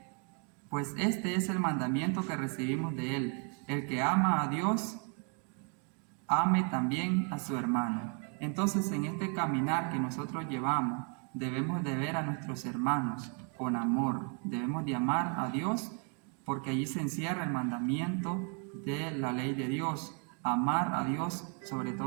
Pues este es el mandamiento que recibimos de Él: el que ama a Dios, ame también a su hermano. Entonces, en este caminar que nosotros llevamos, debemos de ver a nuestros hermanos con amor. Debemos de amar a Dios, porque allí se encierra el mandamiento de la ley de Dios: amar a Dios sobre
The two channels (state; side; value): quieter; left; 37.9 dB